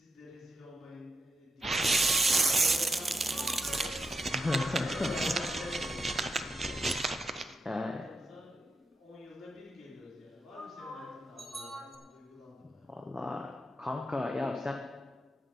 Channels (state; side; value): normal; both; correlation 0.85